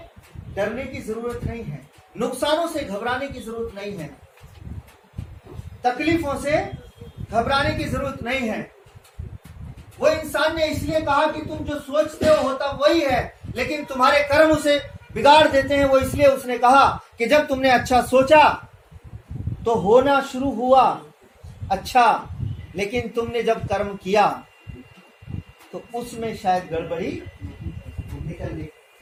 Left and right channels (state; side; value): identical; both; correlation 1.00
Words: डरने की जरूरत नहीं है, नुकसानों से घबराने की जरूरत नहीं है, तकलीफों से घबराने की जरूरत नहीं है। वो इंसान ने इसलिए कहा कि तुम जो सोचते हो होता वही है, लेकिन तुम्हारे कर्म उसे बिगाड़ देते हैं। वो इसलिए उसने कहा कि जब तुमने अच्छा सोचा तो होना शुरू हुआ अच्छा, लेकिन तुमने जब कर्म किया तो उसमें शायद गड़बड़ी निकल गई।